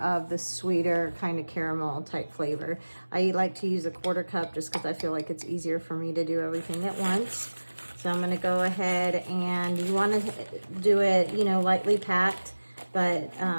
the sweeter kind of caramel type flavor. I like to use a 1/4 cup just because I feel like it's easier for me to do everything at once. So I'm gonna go ahead, and you wanna do it, you know, lightly packed, but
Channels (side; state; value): both; inverted; correlation -1.00